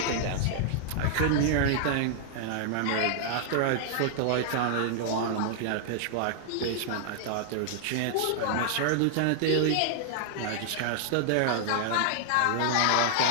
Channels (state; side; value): different; both; correlation -0.01